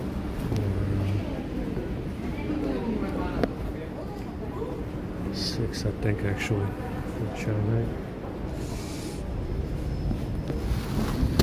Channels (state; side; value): identical; both; correlation 1.00